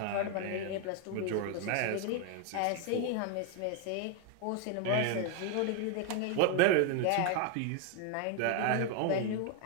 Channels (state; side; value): different; both; correlation 0.01